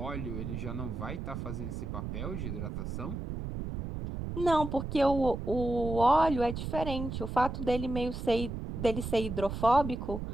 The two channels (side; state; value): right; noise; rumble, 5 dB below the sound